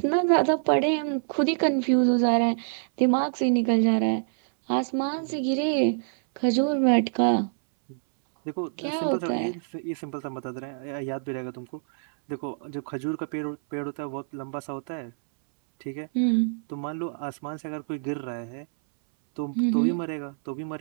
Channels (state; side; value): silent; left; 61 dB below the other